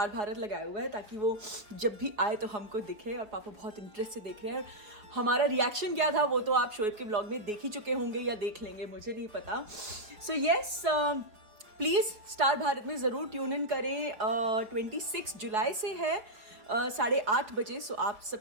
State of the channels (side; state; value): left; late; 5.1 ms